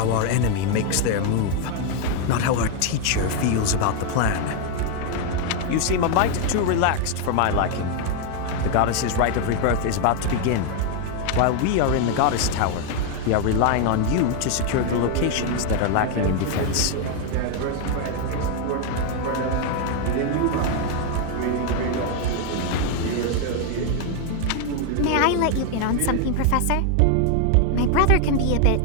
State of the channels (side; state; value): both; different; correlation 0.01